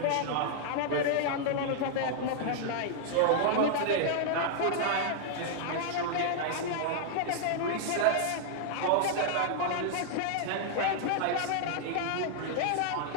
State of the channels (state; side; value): different; both; correlation -0.01